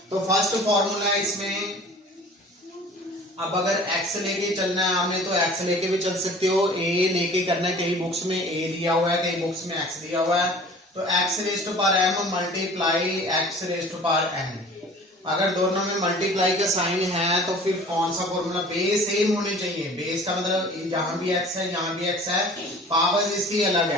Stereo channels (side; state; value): both; normal; correlation 0.46